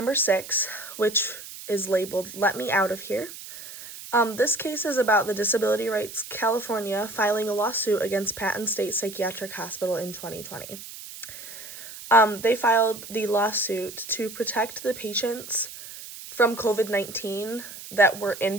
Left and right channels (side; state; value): right; noise; hiss, 13 dB below the sound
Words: 6, which is labeled Let Me Out of Here. This case is about the Disability Rights California filing a lawsuit against Patton State Psychiatric Hospital in 2020. They filed the lawsuit to protect the patients from COVID-19 that were